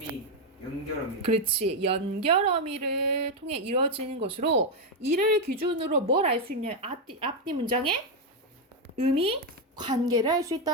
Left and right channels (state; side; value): normal; both; correlation 0.03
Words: 연결어미. 그렇지. 연결어미를 통해 이루어지는 것으로 이를 기준으로 뭘 알 수 있냐면 앞뒤 문장의 의미, 관계를 알 수